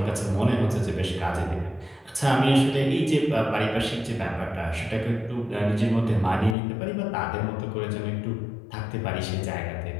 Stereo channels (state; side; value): drops out; right; at 6.6 s